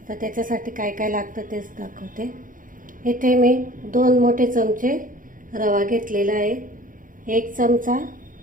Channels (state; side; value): late; left; 0.39 ms